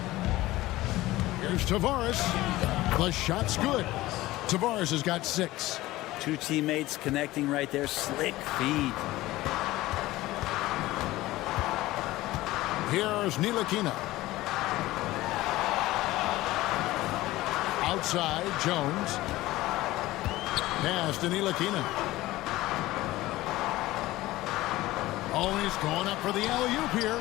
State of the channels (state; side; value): quieter; right; 17.6 dB